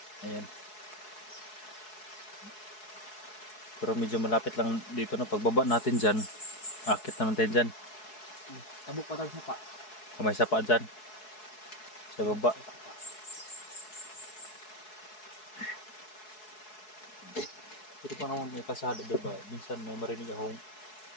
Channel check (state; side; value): late; right; 4.7 ms